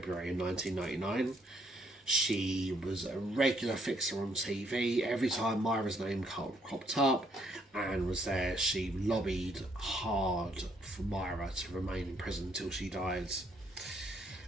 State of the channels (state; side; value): normal; both; correlation 0.70